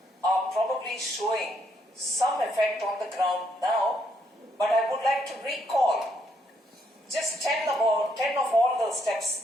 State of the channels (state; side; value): normal; both; correlation 0.73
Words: are probably showing some effect on the ground now, but I would like to recall just 10 of all the